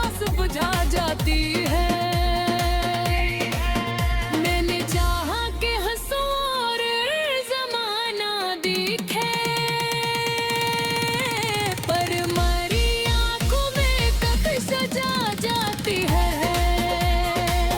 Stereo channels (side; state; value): both; identical; correlation 1.00